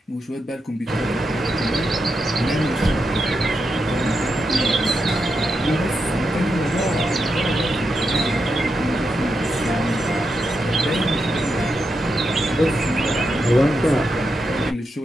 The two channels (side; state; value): both; normal; correlation 0.85